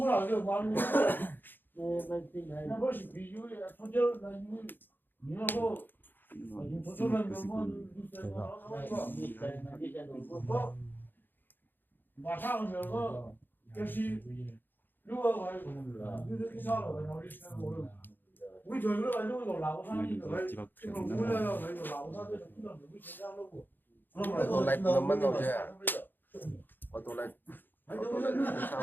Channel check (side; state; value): right; late; 0.093 ms